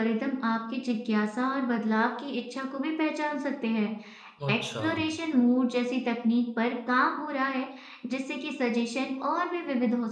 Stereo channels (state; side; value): identical; both; correlation 1.00